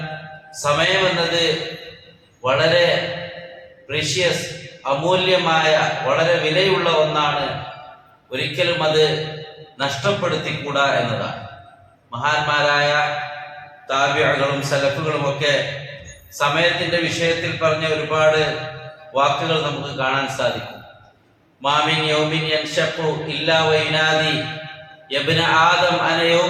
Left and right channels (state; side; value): identical; both; correlation 1.00